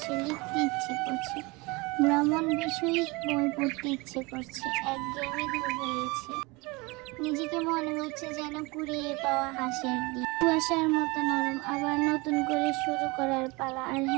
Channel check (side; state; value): left; quieter; 25.3 dB